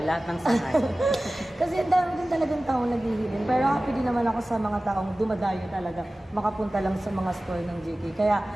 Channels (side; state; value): both; normal; correlation 0.97